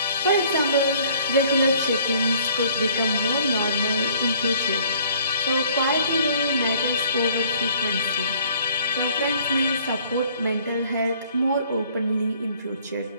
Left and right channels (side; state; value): both; inverted; correlation -0.57